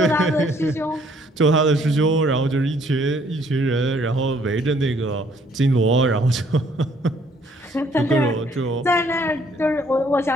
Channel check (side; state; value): both; normal; correlation 0.64